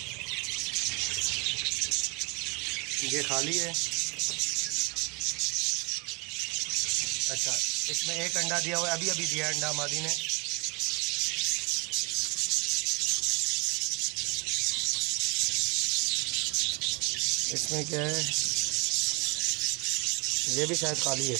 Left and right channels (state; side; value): quieter; left; 29.9 dB